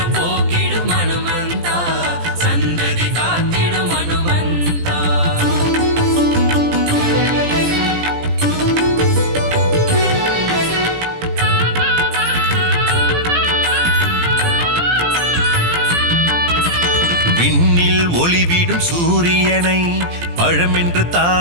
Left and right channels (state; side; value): late; left; 17 ms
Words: போக்கிடும் ஹனுமந்தா சந்ததி காத்திடும் ஹனுமந்தா விண்ணில் ஒளிவிடும் சூரியனை பழமென்று